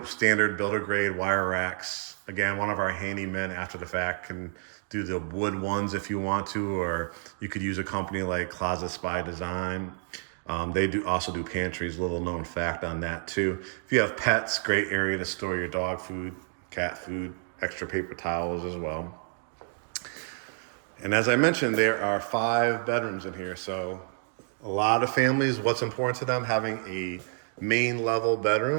standard builder grade wire racks. Again, one of our handymen after the fact can do the wood ones if you want to, or you could use a company like Closet by Design. They also do pantries, little known fact on that too. If you have pets, great area to store your dog food, cat food, extra paper towels as well. And as I mentioned, there are 5 bedrooms in here. So a lot of families, what's important to them, having a main level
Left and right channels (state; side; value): silent; left; digital silence